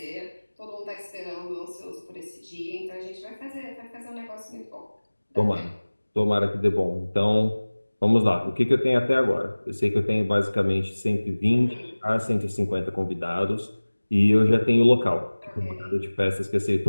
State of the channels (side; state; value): both; inverted; correlation -1.00